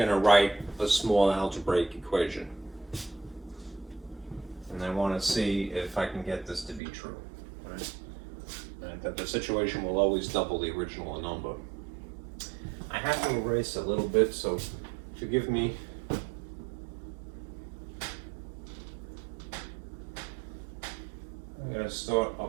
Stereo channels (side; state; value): left; drops out; at 6.8 s